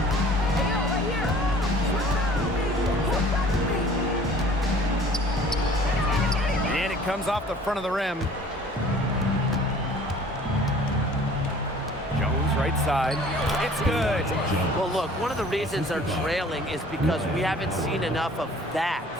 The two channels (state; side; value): normal; both; correlation 0.50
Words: And it comes off the front of the rim. Jones right side. It's good. Well, look, one of the reasons they're trailing is because we haven't seen enough of that.